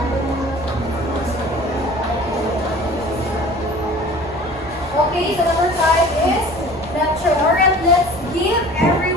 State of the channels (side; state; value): both; normal; correlation 0.44